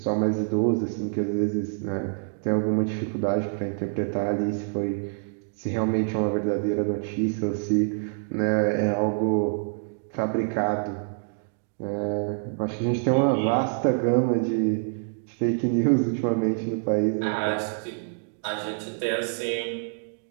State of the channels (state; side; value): silent; left; digital silence